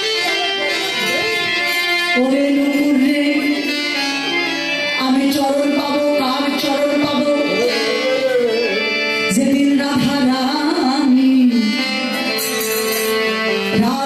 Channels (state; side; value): identical; both; correlation 1.00